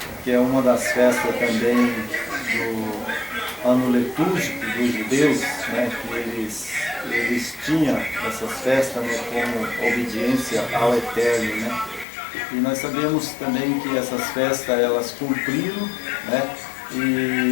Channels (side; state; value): right; drops out; at 12.1 s